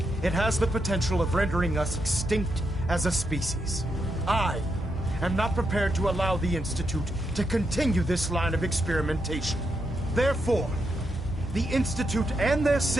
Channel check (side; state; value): both; normal; correlation 0.82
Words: it has the potential of rendering us extinct as a species. I am not prepared to allow the Institute to continue this line of experimentation. Therefore, the Institute and their